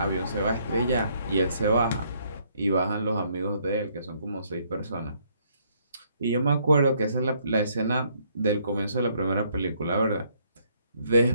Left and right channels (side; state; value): both; inverted; correlation -0.68